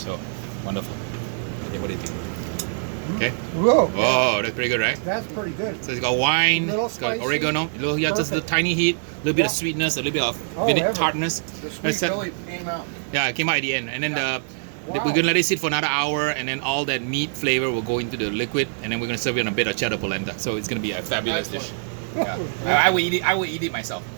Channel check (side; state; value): left; silent; digital silence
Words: wonderful. Okay, what do you think? Okay. Whoa. Oh, that's pretty good, right? That's pretty good. So it's got wine, it's got oregano, just a tiny heat, a little bit of sweetness, a little bit of tartness. The sweet really came out. Yeah, it came out at the end. And then we're gonna let it sit for another hour, and then all that meat flavor will go into the liquid, and then we're gonna serve it on a bit of cheddar polenta. So it's gonna be a fabulous dish. Yeah. I will eat it myself.